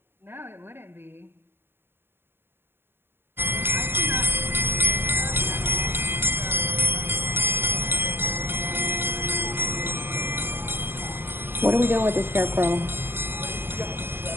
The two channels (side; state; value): left; late; 0.11 ms